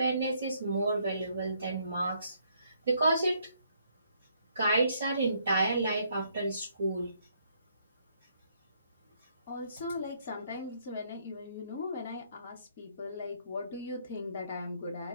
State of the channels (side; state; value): both; inverted; correlation -0.70